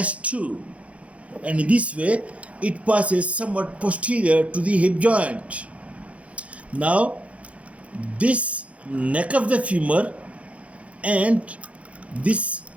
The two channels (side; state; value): left; late; 0.064 ms